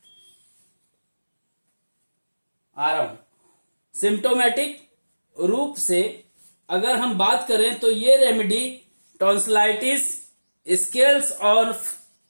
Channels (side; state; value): both; inverted; correlation -1.00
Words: सिम्टोमेटिक रूप से अगर हम बात करें तो ये रेमेडी टॉन्सिलाइटिस, स्केल्स और